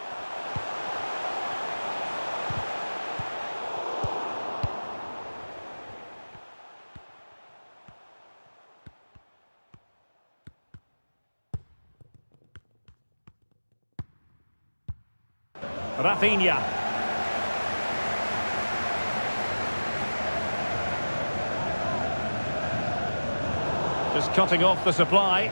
Rafinha. Just cutting off the supply.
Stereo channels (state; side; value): inverted; both; correlation -1.00